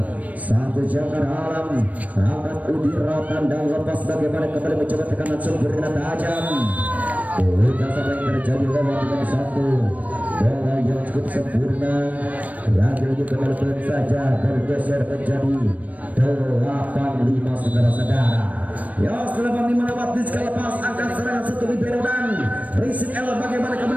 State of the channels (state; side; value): late; left; 0.071 ms